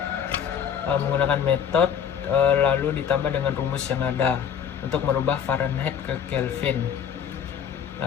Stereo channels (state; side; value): quieter; right; 8.1 dB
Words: menggunakan metode lalu ditambah dengan rumus yang ada untuk merubah Fahrenheit ke Kelvin.